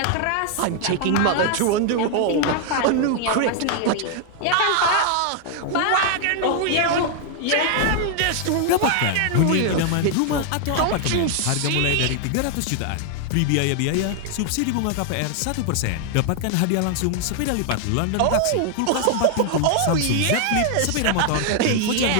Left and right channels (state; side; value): different; both; correlation 0.00